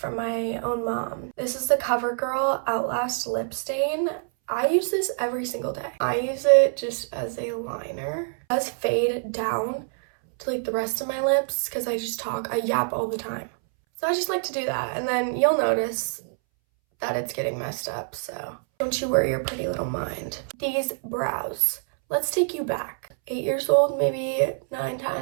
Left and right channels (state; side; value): silent; left; 61 dB below the other